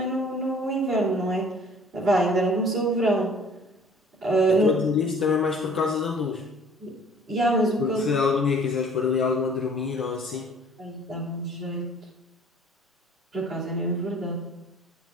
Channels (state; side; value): normal; both; correlation 0.52